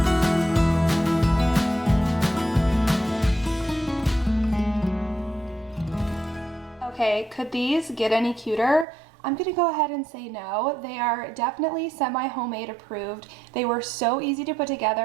Okay, could these get any cuter? I'm gonna go ahead and say no. They are definitely semi-homemade approved. They were so easy to put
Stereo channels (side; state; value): left; drops out; at 8.8 s